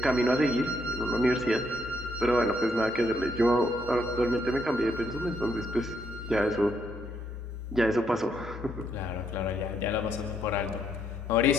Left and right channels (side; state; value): both; normal; correlation 0.74